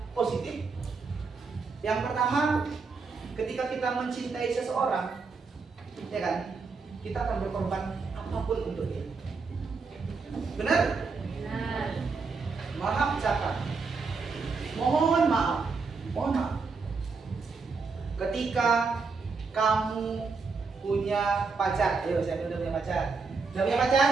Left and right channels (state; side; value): quieter; left; 4.6 dB